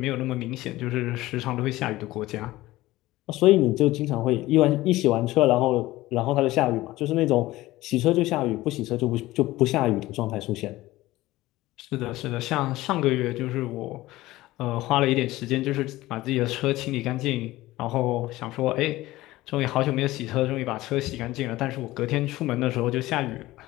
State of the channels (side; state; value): right; quieter; 17.5 dB